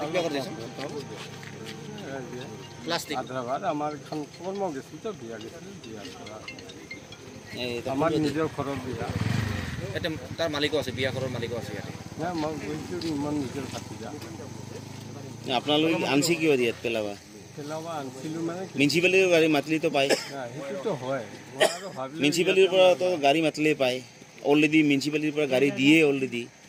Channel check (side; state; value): both; identical; correlation 1.00